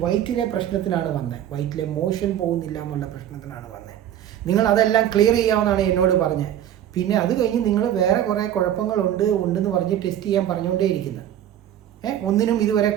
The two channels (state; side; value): quieter; left; 11.1 dB